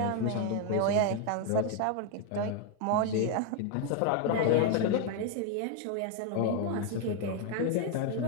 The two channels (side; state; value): both; different; correlation 0.00